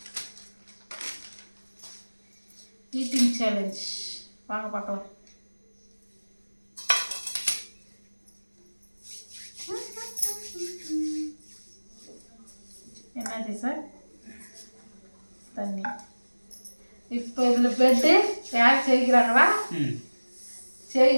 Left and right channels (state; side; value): inverted; both; correlation -1.00